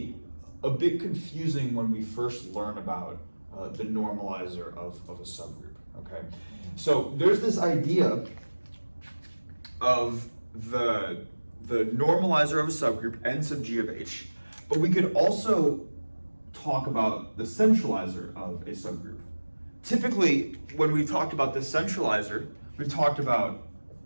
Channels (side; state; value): both; inverted; correlation -1.00